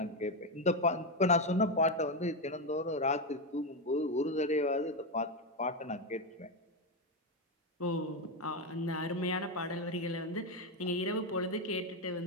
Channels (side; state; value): both; normal; correlation 0.08